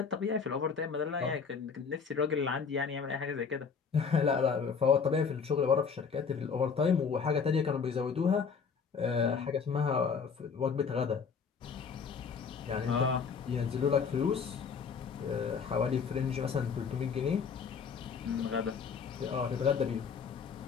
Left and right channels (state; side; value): quieter; right; 5.9 dB